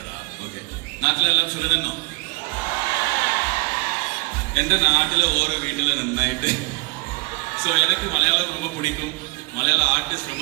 നാട്ടിലെല്ലാം സുഖതന്നോ? എൻ്റെ നാട്ടിലെ ഓരോ വീട്ടിൽ നന്നായിട്ട് ஸோ எனக்கு மலையாளம் ரொம்ப பிடிக்கும், மலையாள ஆர்டிஸ்ட்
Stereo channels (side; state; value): left; quieter; 27.5 dB